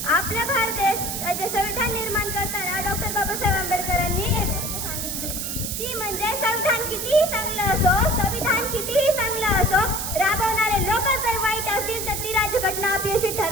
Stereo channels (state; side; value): noise; right; hiss, 3 dB below the sound